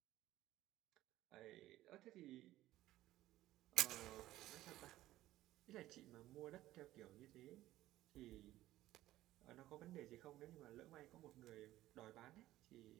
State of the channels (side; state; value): left; quieter; 15.2 dB